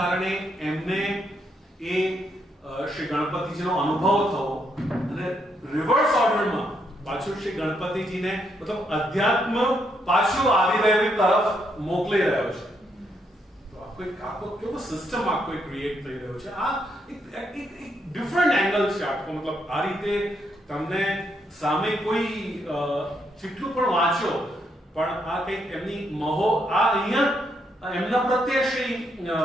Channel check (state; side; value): normal; both; correlation 0.77